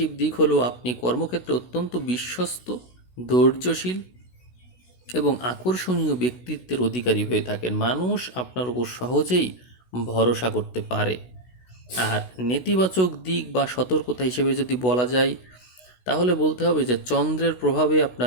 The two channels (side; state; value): right; late; 16 ms